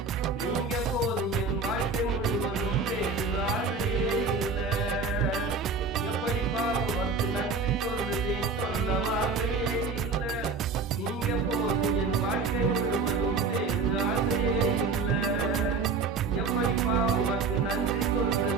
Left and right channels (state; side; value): quieter; left; 4.3 dB